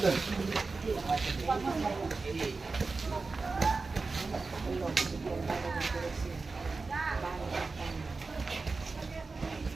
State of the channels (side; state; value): left; quieter; 4.0 dB